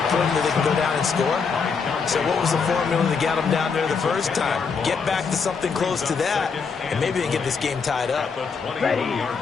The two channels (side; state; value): right; quieter; 5.4 dB